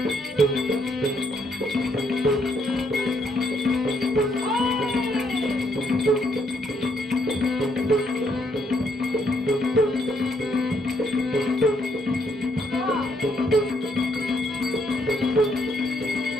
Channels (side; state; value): both; normal; correlation 0.73